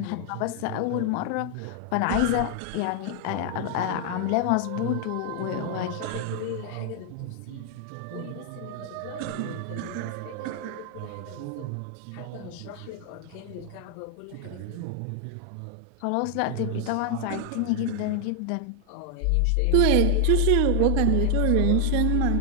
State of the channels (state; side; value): different; both; correlation 0.00